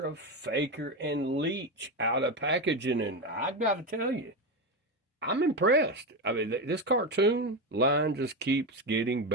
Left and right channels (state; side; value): normal; both; correlation 0.14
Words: Faker, and Leech out of packaging, and I've got to tell you, I'm impressed. I mean, this cartoon line just keeps getting